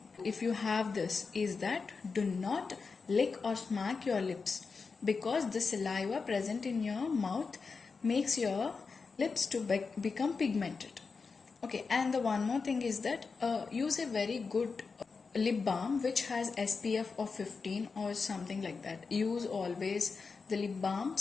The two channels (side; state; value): right; quieter; 4.8 dB